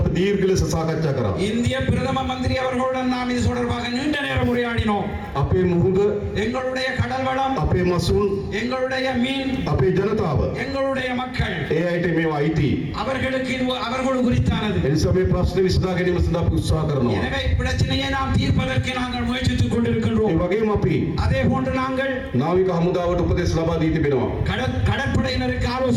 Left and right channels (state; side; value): identical; both; correlation 1.00